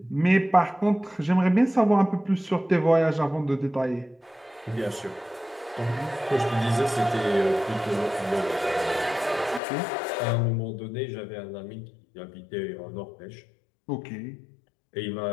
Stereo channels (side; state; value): right; drops out; at 9.6 s